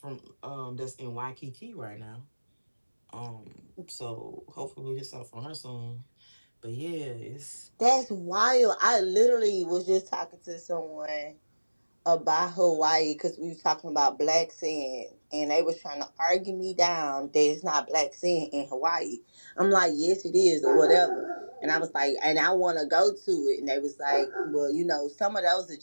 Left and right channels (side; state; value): both; inverted; correlation -1.00